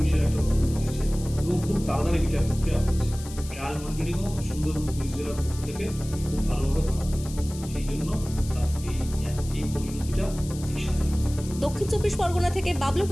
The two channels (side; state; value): left; noise; hiss, 16 dB below the sound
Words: একটা তদন্ত হয়েছে এবং খুব তাড়াতাড়ি বিচার প্রক্রিয়া হয়েছে। ট্রায়াল মনিটরিংও সুন্দরবন পুলিশ জেলার পক্ষ থেকে খুব ভালোভাবে করা হয়েছে। সেই জন্য এই পরিণতিটা এই সাজা। দক্ষিণ 24 পরগনা থেকে বাবলু